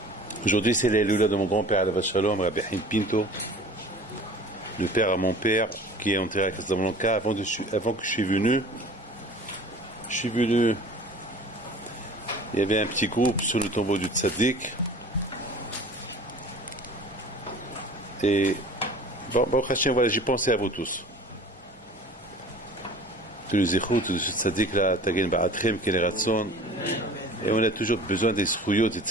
aujourd'hui c'est l'Eloula de mon grand-père Alav Shalom, Rabbi Haim Pinto, le père à mon père qui est enterré à Casablanca. Avant que je suis venu, il y avait un petit groupe sur le tombeau du Tzaddik. Et voilà, j'ai pensé à vous tous. Tous les échouts, tous ce tzaddik là, Tagen Ba'atrem, Ken Ratson. Et on a toujours besoin des srouyot, des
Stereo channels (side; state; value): both; normal; correlation 0.44